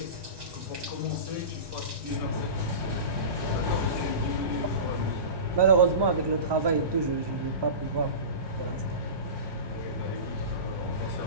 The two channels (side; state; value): left; late; 1.2 ms